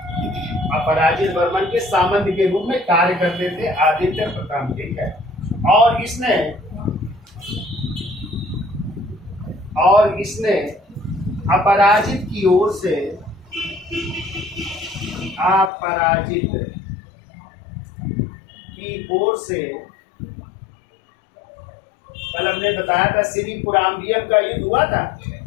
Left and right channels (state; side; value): drops out; right; at 15.7 s